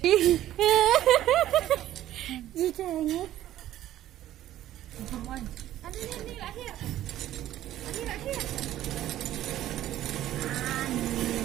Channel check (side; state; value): left; quieter; 13.2 dB